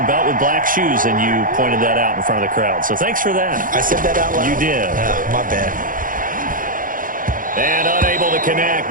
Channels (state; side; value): late; left; 0.40 ms